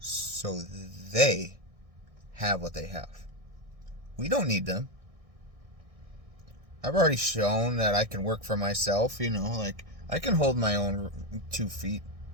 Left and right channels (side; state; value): left; late; 1.6 ms